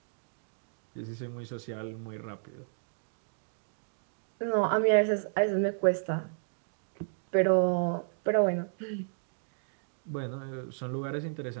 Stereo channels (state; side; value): silent; left; digital silence